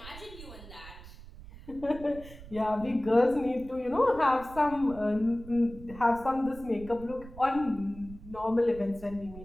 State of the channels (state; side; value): noise; right; rumble, 16 dB below the sound